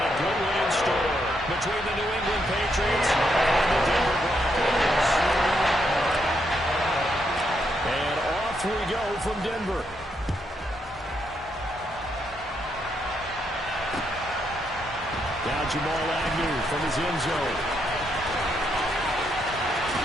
a good one in store between the New England Patriots and the Denver Broncos. And off we go from Denver. Now Jamal Agnew from his end zone.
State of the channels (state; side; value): normal; both; correlation 0.78